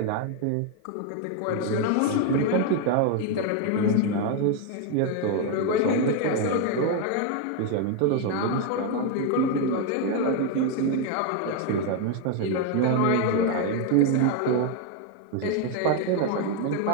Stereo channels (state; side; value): different; both; correlation 0.01